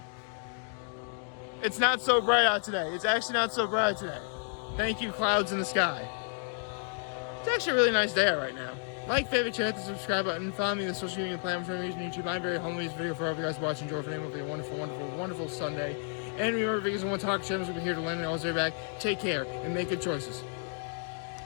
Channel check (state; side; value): silent; right; 57 dB below the other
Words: It's not so bright out today. It's actually not so bright today. Thank you, clouds in the sky. It's actually a really nice day out right now. Like, favorite, share, hit the subscribe button. Follow me on the social media platforms I'm using YouTube. I'm very humble with this video for all of you guys watching. Enjoy for a wonderful, wonderful, wonderful Sunday. And remember, because I want to talk channels, we'll be here to learn and always right back. Take care and make good choices.